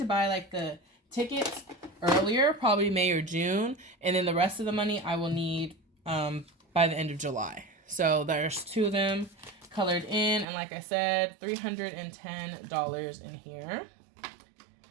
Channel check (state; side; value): drops out; left; at 10.5 s